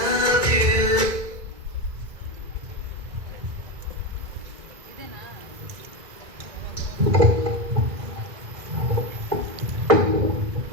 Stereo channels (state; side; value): late; left; 2.2 ms